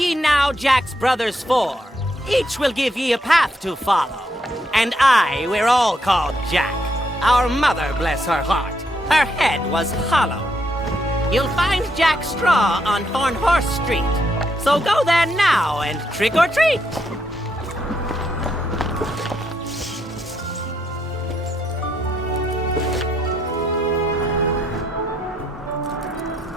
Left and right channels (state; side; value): normal; both; correlation 0.77